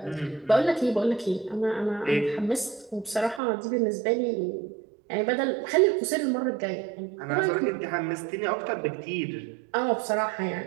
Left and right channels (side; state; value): left; drops out; at 3.4 s